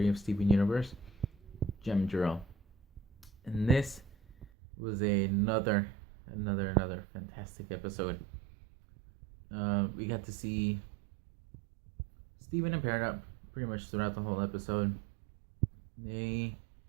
of Steven Universe, Gem Drill. And this was another fantastic episode. We got to see Steven and Peridot pretty much throughout the whole episode. They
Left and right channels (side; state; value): left; drops out; at 4.5 s